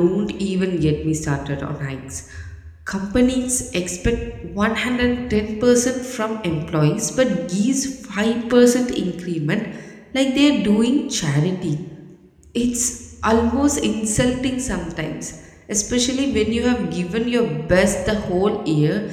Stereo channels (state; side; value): identical; both; correlation 1.00